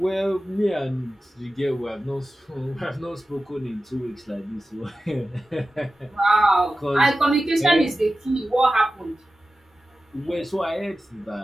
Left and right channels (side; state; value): both; normal; correlation 0.94